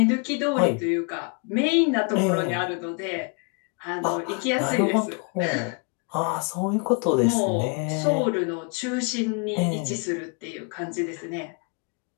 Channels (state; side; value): quieter; right; 35.2 dB